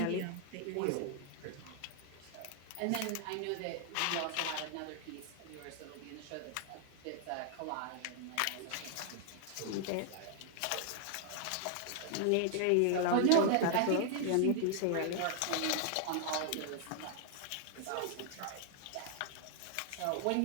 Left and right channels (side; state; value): both; different; correlation 0.00